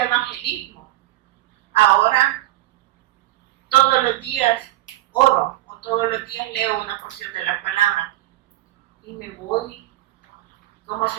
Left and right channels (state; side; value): quieter; left; 16.7 dB